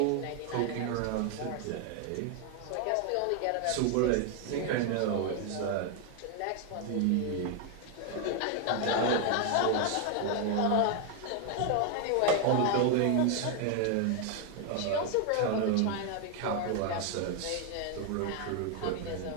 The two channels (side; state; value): both; different; correlation 0.01